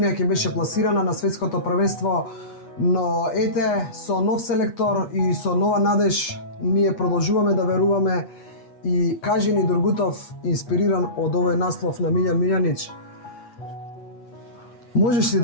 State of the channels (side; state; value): right; late; 8.4 ms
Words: ќе беше пласирана на светското првенство, но ете, со нов селектор и со нова надеж, ние продолжуваме да веруваме и кажи ни Durgutov, инспириран од овој наслов на Милјан Милјанич, можеш ли